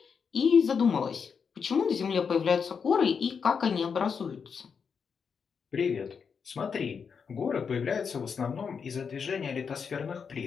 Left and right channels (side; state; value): right; quieter; 6.2 dB